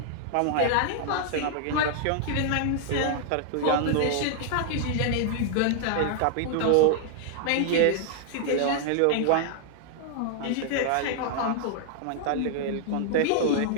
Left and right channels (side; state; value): both; different; correlation 0.00